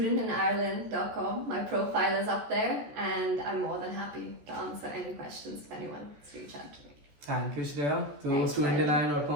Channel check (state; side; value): late; left; 14 ms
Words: my profile is up there, and I'm more than happy to answer any questions if anyone wants to reach out to me. Thank you, Shreya. So